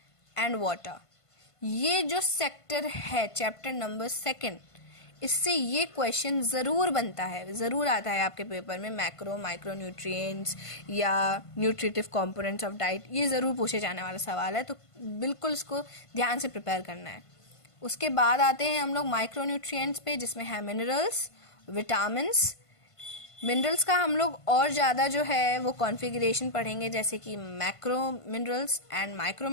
and water. ये जो सेक्टर है चैप्टर नंबर 2, इससे ये क्वेश्चन ज़रूर बनता है, ज़रूर आता है आपके पेपर में। मैक्रो माइक्रो न्यूट्रिएंट्स या न्यूट्रिटिव कंपोनेंट्स ऑफ डाइट, ये ज़रूर पूछे जाने वाला सवाल है, तो बिल्कुल इसको ध्यान से प्रिपेयर करना है। उसके बाद आते हैं हम लोग माइक्रो न्यूट्रिएंट्स पे, जिसमें है मिनरल्स, विटामिन्स। मिनरल्स का हम लोग और ज़्यादा जो है वो कॉन्फ़िगरेशन पढ़ेंगे, जैसे कि macro minerals and micro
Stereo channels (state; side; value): late; right; 1.5 ms